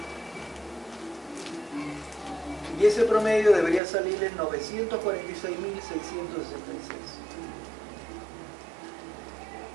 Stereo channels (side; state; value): left; drops out; at 3.8 s